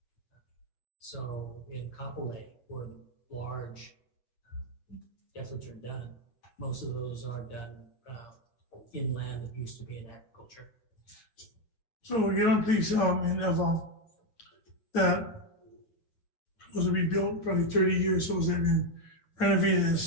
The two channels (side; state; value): right; late; 8.5 ms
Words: So in Kapolei, where large efforts are done, most of those are done in land that used to be in agriculture. So we get on place in Eva that was to be built probably 30 years, so they've been renovated